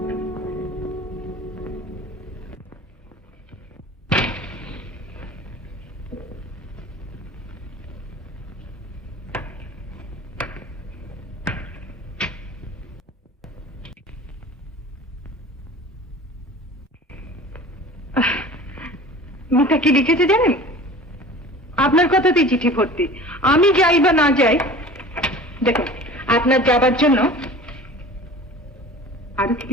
মিতা কি লিখেছে জানেন? আপনার কথাতেই চিঠি ভর্তি। আমি যাই বা না যাই, দেখুন আপনার যাবার জন্য আরো কি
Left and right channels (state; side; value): normal; both; correlation 0.40